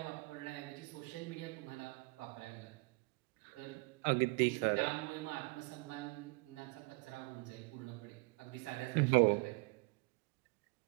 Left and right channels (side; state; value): left; quieter; 27.0 dB